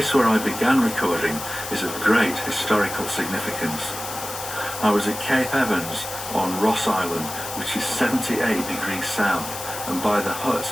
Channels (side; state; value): left; noise; hiss, 9 dB below the sound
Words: where I began recording is of great historical significance. I was at Cape Evans on Ross Island, which is 78 degrees south, and by the hut